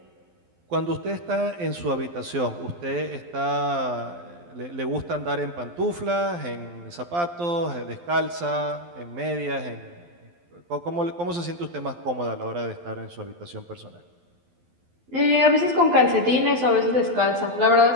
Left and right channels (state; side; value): late; left; 12 ms